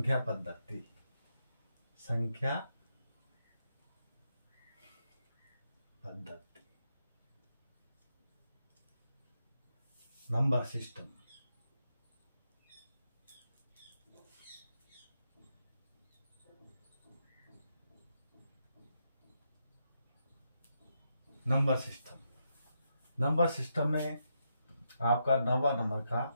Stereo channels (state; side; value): inverted; both; correlation -0.82